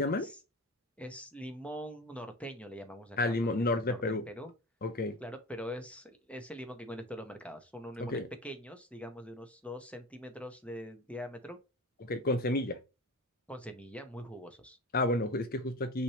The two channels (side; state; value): both; normal; correlation 0.31